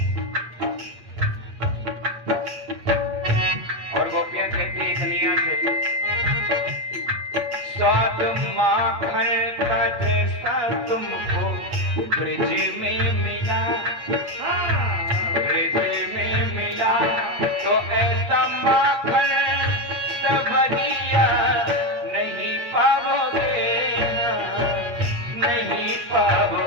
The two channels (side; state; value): left; late; 8.3 ms